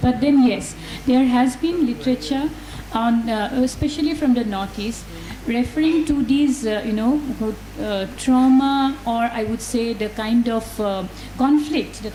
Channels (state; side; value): identical; both; correlation 1.00